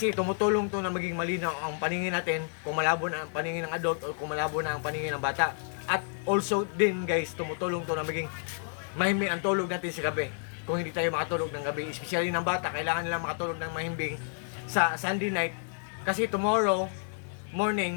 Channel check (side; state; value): right; silent; 57 dB below the other